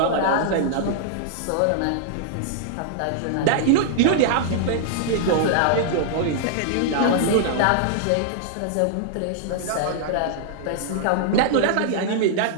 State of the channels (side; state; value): both; different; correlation -0.01